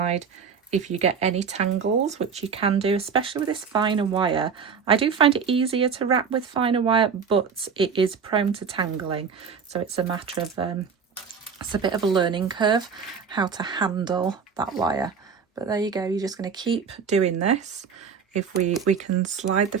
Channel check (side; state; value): left; quieter; 6.2 dB